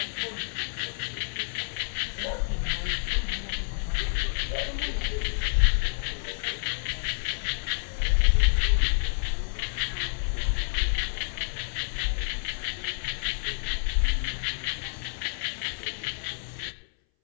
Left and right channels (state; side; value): silent; right; 58 dB below the other